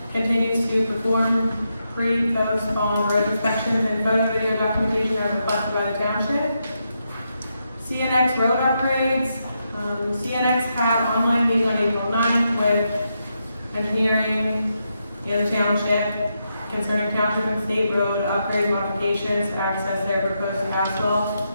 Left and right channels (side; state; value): both; inverted; correlation -0.83